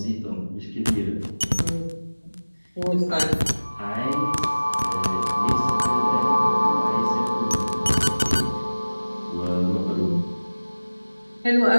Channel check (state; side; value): inverted; both; correlation -1.00